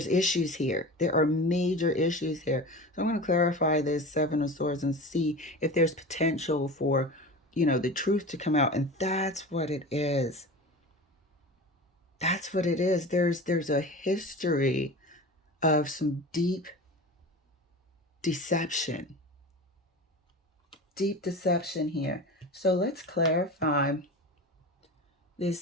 issues here. There are major issues here. So I'm going to clarify this 7 of Swords and see if there's potential for, you know, the truth to come out. And that's what it is. That's what it is. There's a history of some deep deception. Deep deception here. So let's clarify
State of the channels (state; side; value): normal; both; correlation 0.32